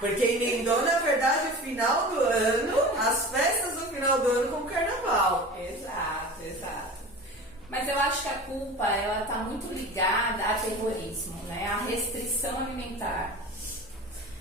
emendou, na verdade, o final do ano, as festas do final do ano com o carnaval. Exato, exato. Mas eu acho que a culpa, ela tá muito ligada a terrorismo, né? A restrição alimentar.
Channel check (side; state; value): both; normal; correlation 0.36